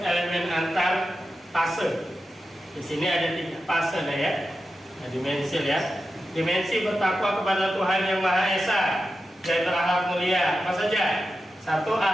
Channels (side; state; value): both; normal; correlation 0.91